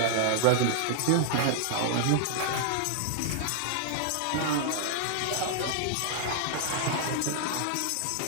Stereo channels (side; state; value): both; different; correlation -0.01